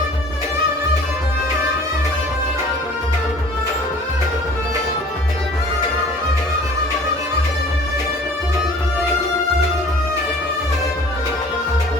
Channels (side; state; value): both; normal; correlation 0.49